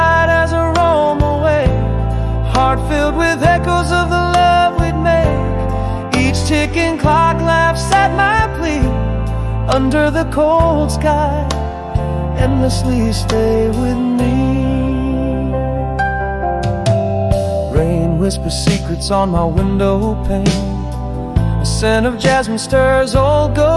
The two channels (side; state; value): both; identical; correlation 1.00